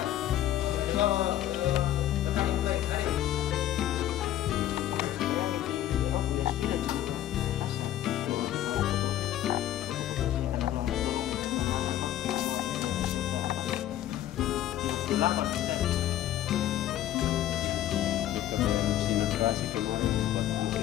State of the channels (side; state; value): right; quieter; 12.6 dB